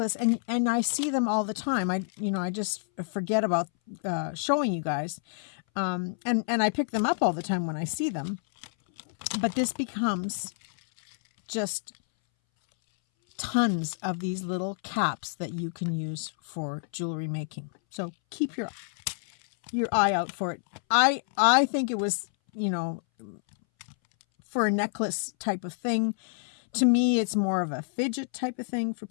and I see them all the time. I just forget about showing you guys. And I pick them up all the time when I see them. But this becomes just tons of these little caps that you can use for jewelry making. So keep your eye out for it. I think it was, for a necklace type of thing. To me, it's more of a fidget type of thing for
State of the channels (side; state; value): right; silent; 59 dB below the other